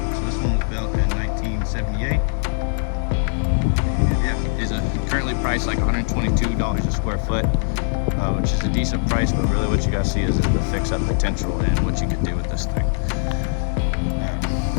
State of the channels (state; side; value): silent; right; 65 dB below the other